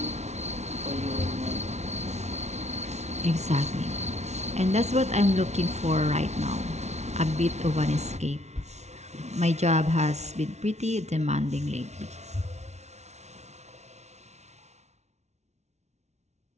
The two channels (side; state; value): left; late; 0.32 ms